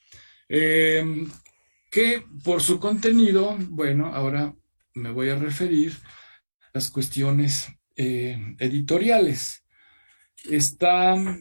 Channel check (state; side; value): inverted; both; correlation -1.00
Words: que por su contenido, bueno, ahora me voy a referir a las cuestiones editoriales. Está